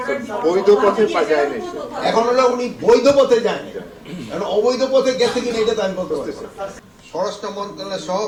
বৈধ পথে যায় না। এখন হলো উনি বৈধ পথে যায়নি, কারণ অবৈধ পথে গেছে কিনা এটা তো আমি বলতে পারছি। স্বরাষ্ট্র মন্ত্রণালয় সহ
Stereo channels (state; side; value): identical; both; correlation 1.00